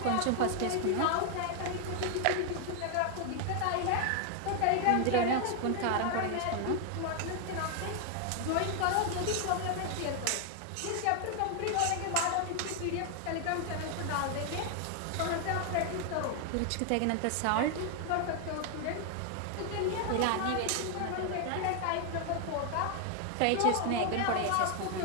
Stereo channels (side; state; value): both; different; correlation 0.00